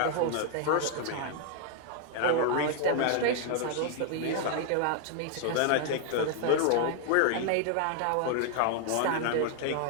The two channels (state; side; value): different; both; correlation 0.00